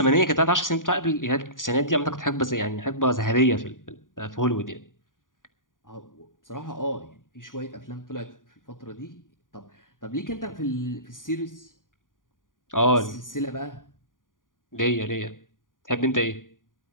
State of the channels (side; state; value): right; late; 0.89 ms